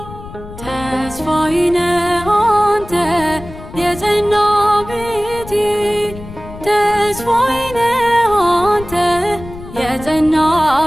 ተስፋዬ ነህ አንተ የጸና ቤቴ ተስፋዬ ነህ አንተ የጸና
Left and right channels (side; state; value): left; noise; rumble, 15 dB below the sound